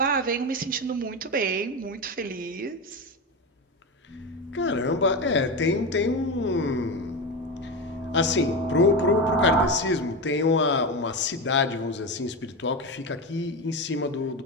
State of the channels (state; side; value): normal; both; correlation 0.18